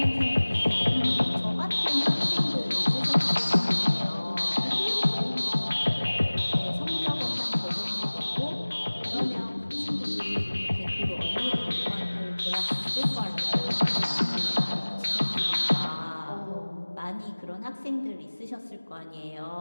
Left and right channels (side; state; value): both; inverted; correlation -1.00